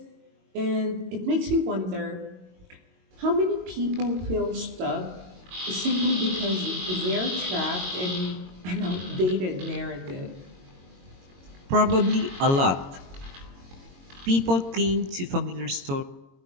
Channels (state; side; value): late; left; 22 ms